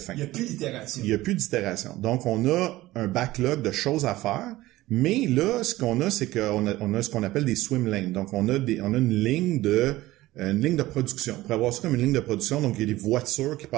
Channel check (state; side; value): quieter; left; 17.2 dB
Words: Il n'y a plus d'itération. Donc, on a un backlog de choses à faire, mais là, ce qu'on a, c'est qu'on a ce qu'on appelle des swim lanes. Donc, on a une ligne de production. On pourrait avoir ça comme une ligne de production, donc il y a des voitures qui